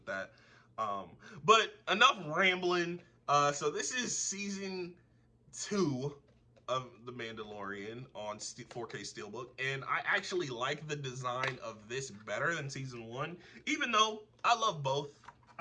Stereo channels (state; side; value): identical; both; correlation 1.00